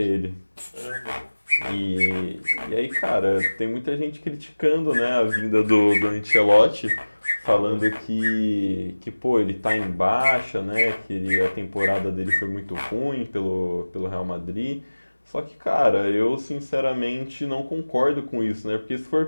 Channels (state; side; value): inverted; both; correlation -1.00